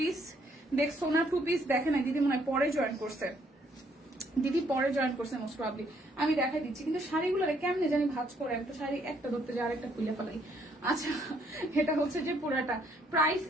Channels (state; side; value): normal; both; correlation 0.68